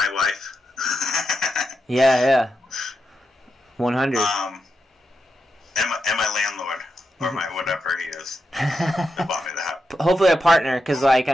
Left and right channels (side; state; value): both; normal; correlation 0.86